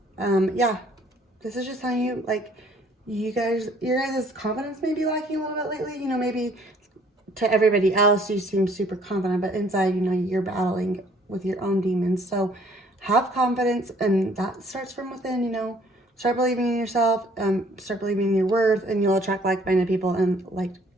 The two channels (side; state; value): both; normal; correlation 0.59